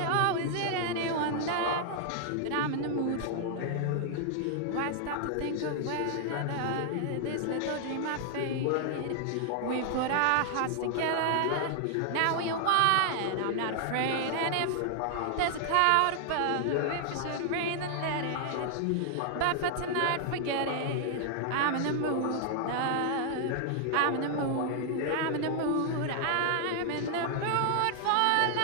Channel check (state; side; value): different; both; correlation 0.00